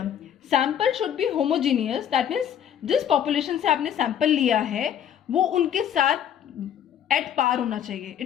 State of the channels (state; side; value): quieter; right; 9.5 dB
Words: sample should be homogeneous. That means जिस population से आपने sample लिया है वो उनके साथ एट पार होना चाहिए.